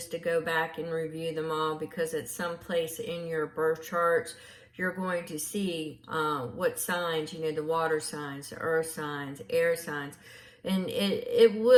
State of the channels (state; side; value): identical; both; correlation 1.00